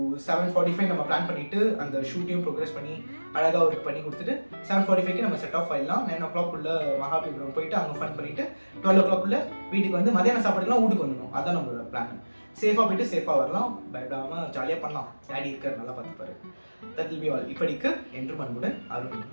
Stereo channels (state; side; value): inverted; both; correlation -1.00